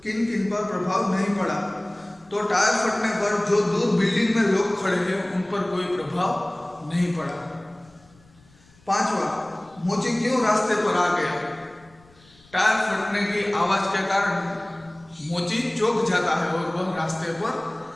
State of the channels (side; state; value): left; noise; rumble, 29 dB below the sound